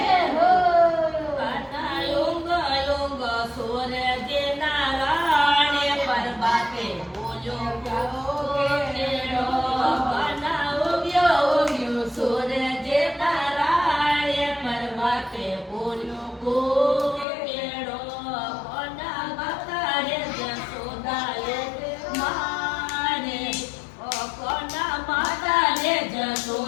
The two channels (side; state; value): right; drops out; at 17.2 s